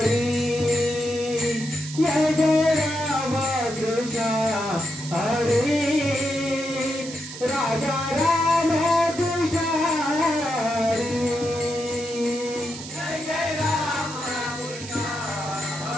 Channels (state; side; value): noise; right; hiss, 12 dB below the sound